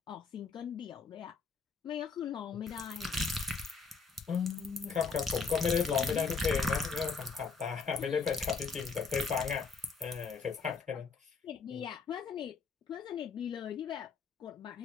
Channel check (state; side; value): quieter; right; 5.0 dB